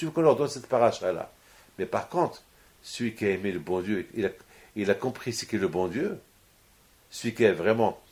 veux qu'on leur donne cette paracha-là? Mais par contre, celui qui a aimé le bon Dieu, il a compris ce qu'est le bon Dieu. Celui qui est vraiment,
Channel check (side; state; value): both; identical; correlation 1.00